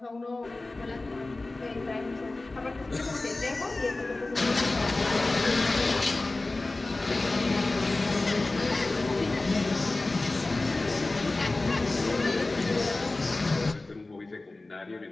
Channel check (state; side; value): quieter; right; 3.1 dB